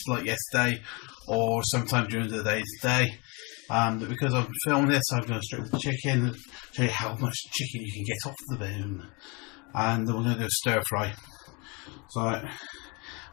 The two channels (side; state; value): right; quieter; 29.7 dB